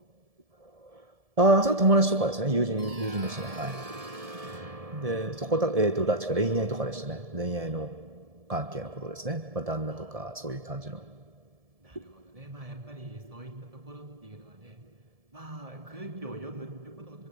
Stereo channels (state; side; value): late; left; 1.7 ms